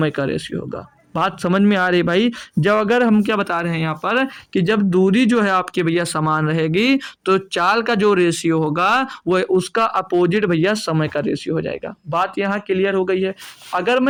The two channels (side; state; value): both; identical; correlation 1.00